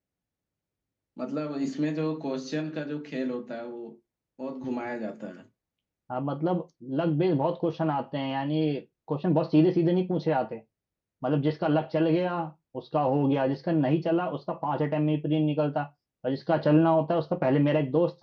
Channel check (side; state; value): both; identical; correlation 1.00